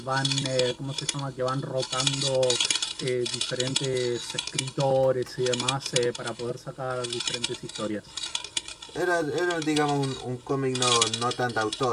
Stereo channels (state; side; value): identical; both; correlation 1.00